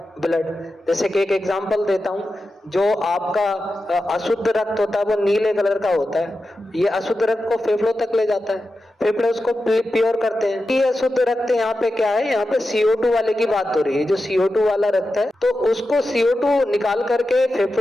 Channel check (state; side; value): normal; both; correlation 0.91